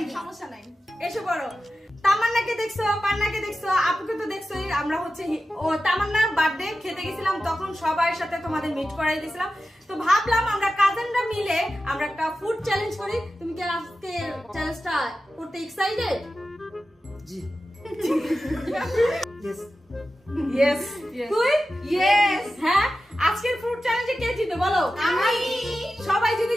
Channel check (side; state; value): both; normal; correlation 0.93